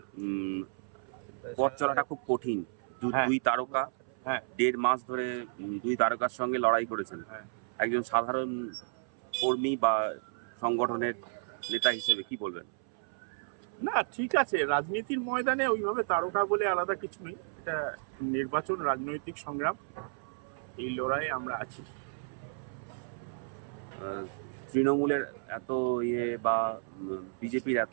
পথ চলাটা খুব কঠিন। হ্যাঁ। দুই তারকা হ্যাঁ। ১.৫ মাস ধরে দুই তারকার সঙ্গে লড়াই করেছেন। হ্যাঁ। একজন সাধারণ কর্মী বা সংগঠনের নেতা হিসেবে কি বলবেন? না, ঠিক আছে, রাজনীতির ময়দানে ওইভাবে তারকা বলে আলাদা কিছু নেই। এটা নির্বাচন, রাজনৈতিক সংগ্রাম, এই লড়াইয়ে আমরা আছি। তৃণমূলের এত বা বিজেপির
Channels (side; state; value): left; silent; 56 dB below the other